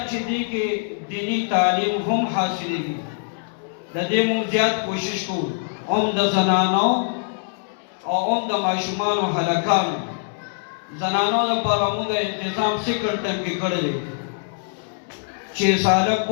چې دې کې دینی تعلیم هم حاصلېږي د دې موږ زیات کوشش کوو د زنانو او د ماشومانو هلکانو زنانو لپاره موږ انتظام سیکنډ ټرم کې کړی دی چې ساله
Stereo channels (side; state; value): right; silent; 63 dB below the other